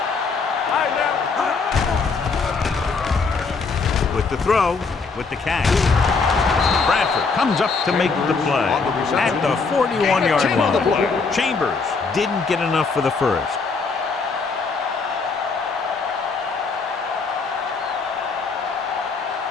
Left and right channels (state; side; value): quieter; right; 4.6 dB